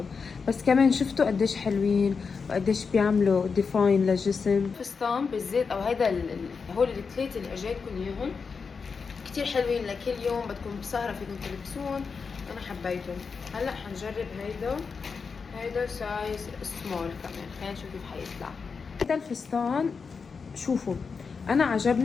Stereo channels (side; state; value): right; quieter; 5.3 dB